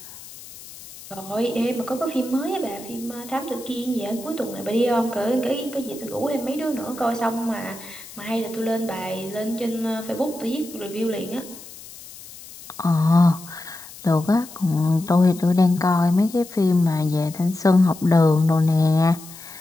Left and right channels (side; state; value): left; noise; hiss, 17 dB below the sound